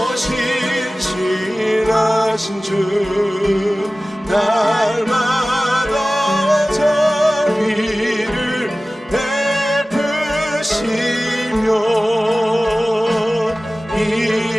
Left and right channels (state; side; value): normal; both; correlation 0.97